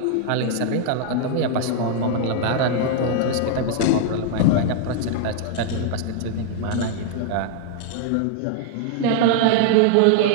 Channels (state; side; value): different; both; correlation -0.01